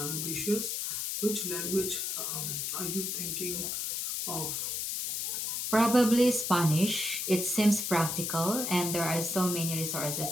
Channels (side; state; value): left; noise; hiss, 2 dB below the sound